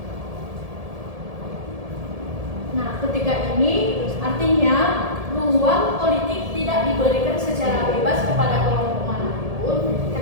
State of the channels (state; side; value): late; left; 1.7 ms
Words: Nah, ketika ini artinya ruang politik tidak diberikan secara bebas kepada kelompok manapun,